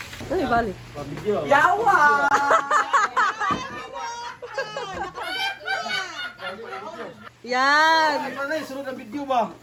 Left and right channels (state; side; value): identical; both; correlation 1.00